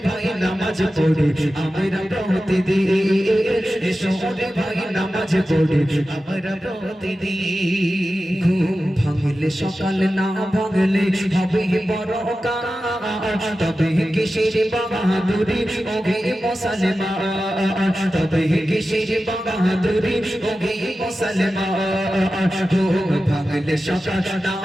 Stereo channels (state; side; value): normal; both; correlation 0.93